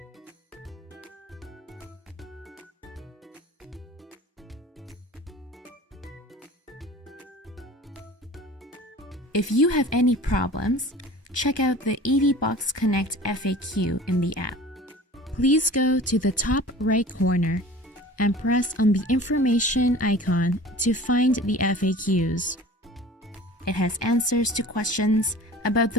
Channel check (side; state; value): both; normal; correlation 0.42